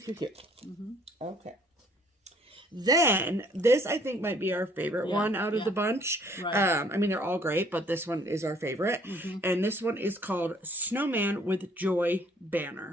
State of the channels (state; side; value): normal; both; correlation 0.61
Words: cute, cute. Okay. Then, this I think might be our favorite one out of the bunch. Right. I mean, they're all great, but this one is our favorite. And this one is called Snowman with Joy